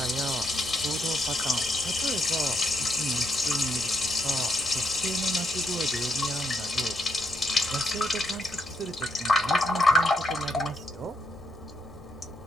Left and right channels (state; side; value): normal; both; correlation 0.77